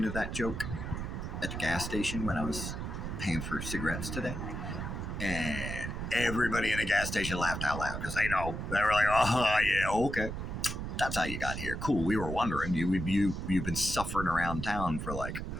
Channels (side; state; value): right; noise; rumble, 5 dB below the sound